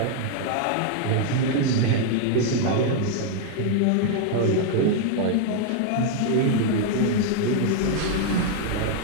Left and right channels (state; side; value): different; both; correlation 0.00